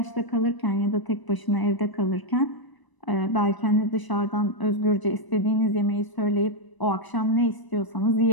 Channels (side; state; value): right; late; 1.0 ms